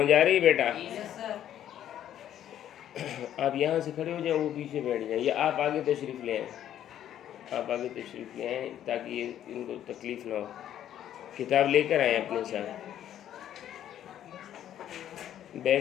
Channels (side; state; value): right; quieter; 11.0 dB